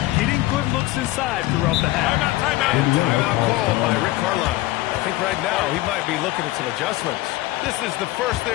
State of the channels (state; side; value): quieter; right; 18.0 dB